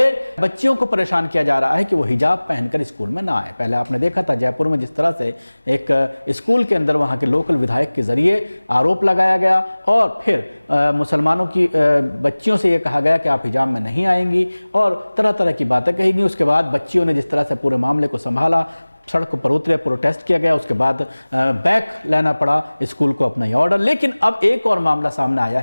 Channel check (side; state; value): both; inverted; correlation -1.00